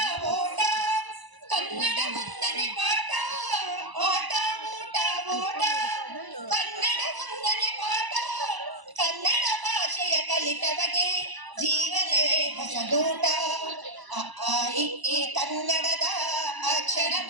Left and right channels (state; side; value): late; left; 1.0 ms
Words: ಓಟ ಕನ್ನಡ ಮುಂದನೆ ಪಾಠ ಆಟ ಊಟ ಓಟ ಕನ್ನಡ ಮುಂದನೆ ಪಾಠ ಕನ್ನಡ ಭಾಷೆಯ ಕಲಿತವಗೆ ಜೀವನವೇ ಹೊಸದೂಟ ಈ ಕನ್ನಡದ